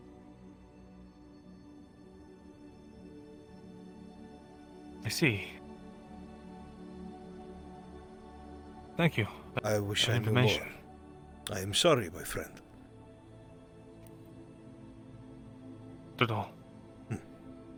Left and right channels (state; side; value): identical; both; correlation 1.00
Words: I see. Thank you. I wish I knew more. I am sorry, my friend. Not at all.